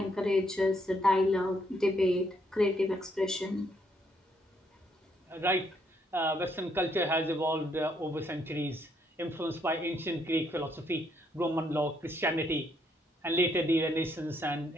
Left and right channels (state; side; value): normal; both; correlation 0.72